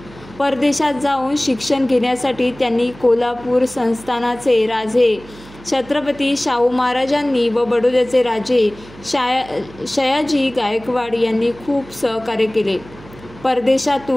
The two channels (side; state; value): right; noise; hum, 20 dB below the sound